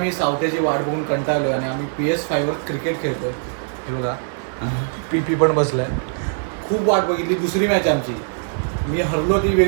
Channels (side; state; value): left; silent; 62 dB below the other